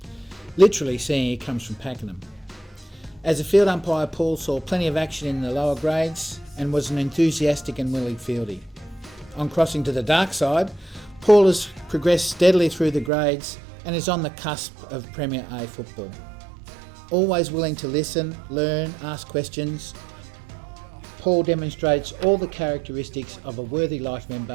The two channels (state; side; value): drops out; left; at 13.1 s